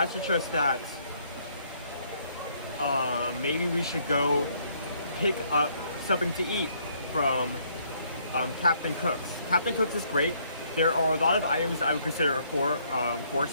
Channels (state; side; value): inverted; both; correlation -0.68